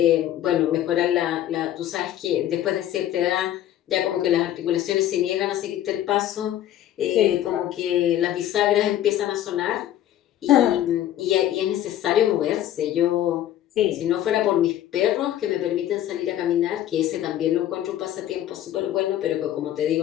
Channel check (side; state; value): right; quieter; 12.2 dB